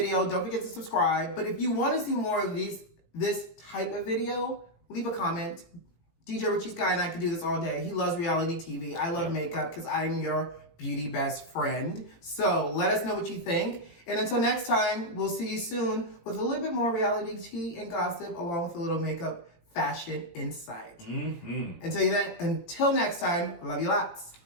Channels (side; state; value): right; late; 18 ms